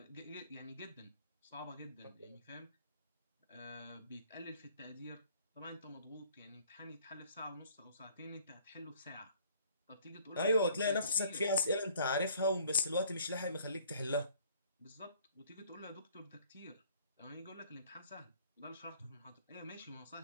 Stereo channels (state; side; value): inverted; both; correlation -0.57